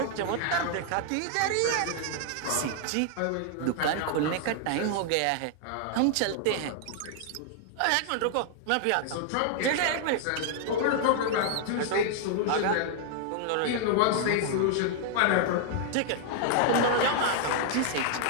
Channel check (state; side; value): different; both; correlation 0.00